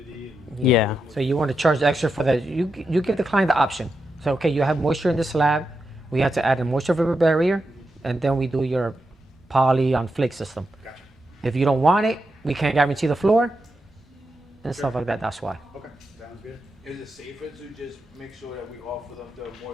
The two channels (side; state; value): both; normal; correlation 0.86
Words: And Yeah. So you want to charge extra for that. You give the client the option. So, okay, you have moisture in the slab. We have to add a moisture vapor barrier, and then we do your poly on flake system. Gotcha. If you don't want it, we can't guarantee the floor and stuff like that. That's why. Okay, sounds good. Is it safer to just make sure that we offer them the